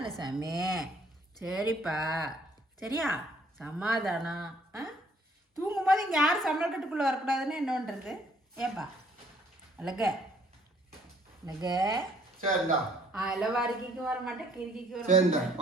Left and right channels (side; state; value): both; normal; correlation 0.62